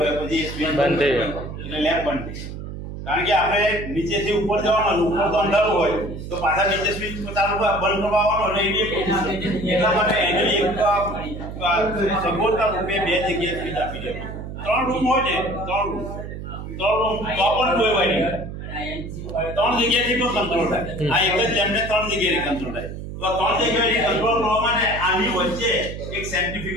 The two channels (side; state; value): right; noise; hum, 9 dB below the sound